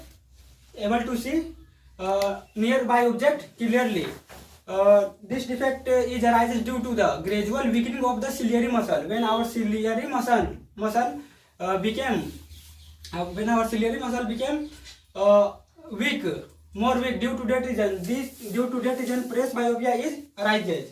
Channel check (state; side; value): identical; both; correlation 1.00